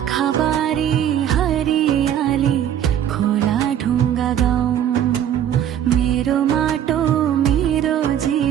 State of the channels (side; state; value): left; quieter; 10.2 dB